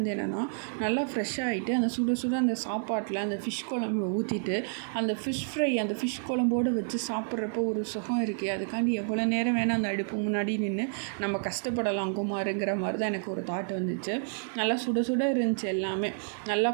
என்னென்னா, நல்லா ஃப்ரெஷ்ஷாகிட்டு அந்த சுட சுட அந்த சாப்பாட்டில் அந்த ஃபிஷ் குழம்பு ஊற்றிட்டு அந்த ஃபிஷ் ஃப்ரை அந்த ஃபிஷ் குழம்போடு வச்சு சாப்பிட்றப்போ ஒரு சுகம் இருக்குது. அதுக்காண்டி எவ்வளோ நேரம் வேணால் அந்த அடுப்பு முன்னாடி நின்று நம்ம கஷ்டப்படலாம் குமாருங்கிற மாதிரி தான் எனக்கு ஒரு தாட் வந்துச்சு. நல்லா சுட சுட இருந்துச்சு எல்லாமே. நல்லா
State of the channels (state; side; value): silent; left; 58 dB below the other